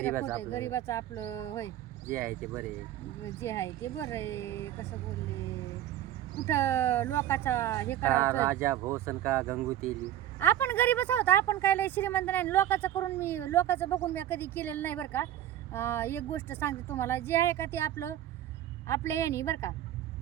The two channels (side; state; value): left; quieter; 12.3 dB